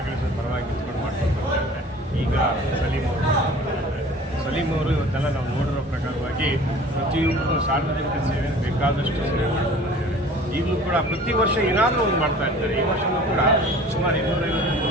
ಪರವಾಗಿ ನಿಂತ್ಕೊಂಡು ಮಾಡ್ಕೊಂಡು ಬರ್ತಾ ಇದ್ದಾರೆ. ಈಗ ಸಲೀಂ ಅವರು ಇವತ್ತೆಲ್ಲ ನಾವು ನೋಡಿರೋ ಪ್ರಕಾರವಾಗಿ ಪ್ರತಿಯೊಬ್ಬರು ಸಾರ್ವಜನಿಕ ಸೇವೆ ಬೇಕಾದಷ್ಟು ಸೇವೆ ಮಾಡ್ಕೊಂಡು ಬಂದಿದ್ದಾರೆ. ಈಗಲೂ ಕೂಡ ಪ್ರತಿ ವರ್ಷ ಏನಾದರೂ ಒಂದು ಮಾಡ್ತಾ ಇರ್ತಾರೆ. ಈ ವರ್ಷವೂ ಕೂಡ ಸುಮಾರು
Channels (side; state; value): both; normal; correlation 0.46